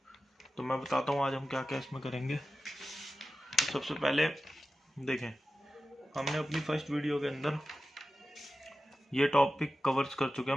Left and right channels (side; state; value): both; normal; correlation 0.93